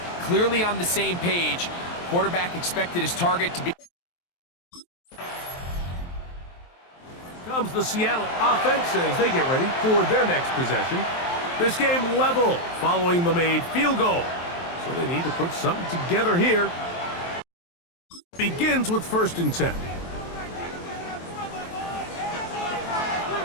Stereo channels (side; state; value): right; late; 23 ms